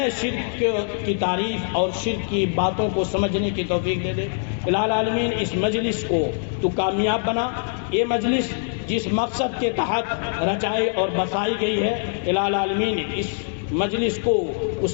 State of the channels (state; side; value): silent; right; digital silence